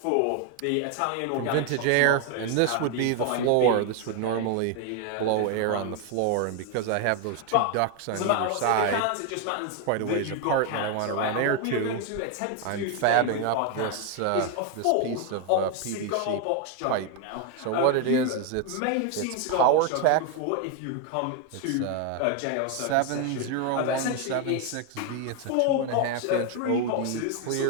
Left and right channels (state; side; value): different; both; correlation 0.01